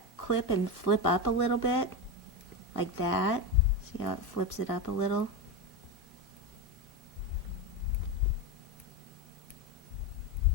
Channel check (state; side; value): normal; both; correlation 0.15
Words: clip and flip up a little bit, like that. See how it flips it up a little?